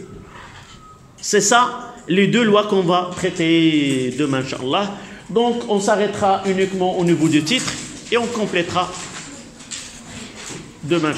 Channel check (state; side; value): identical; both; correlation 1.00